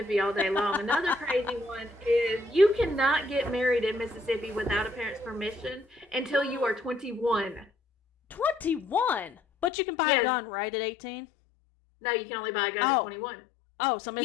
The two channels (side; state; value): right; drops out; at 9.7 s